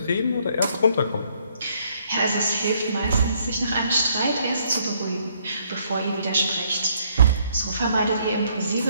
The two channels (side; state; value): both; inverted; correlation -0.68